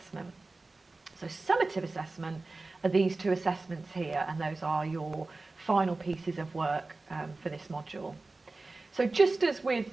So summative assessment are these 2 assessments here, and those are your final pieces of work for this module. So just as with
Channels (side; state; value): left; quieter; 3.4 dB